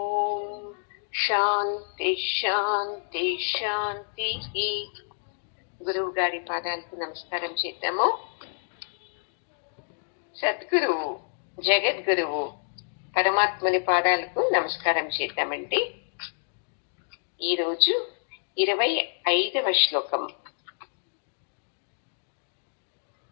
శాంతి శాంతి శాంతి. గురువు గారి పాదాలకు నమస్కారం చేద్దాము. సద్గురువు జగద్గురువు పరమాత్మని పాదాలకు నమస్కారం చేద్దామండి. ఈరోజు 25వ శ్లోకం.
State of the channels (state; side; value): silent; right; digital silence